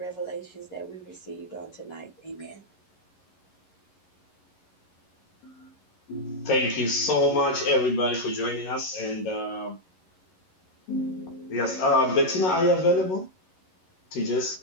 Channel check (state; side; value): late; right; 11 ms